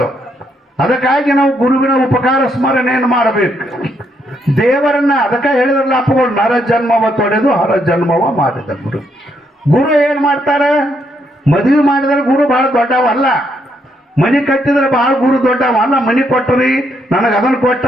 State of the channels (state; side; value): normal; both; correlation 0.75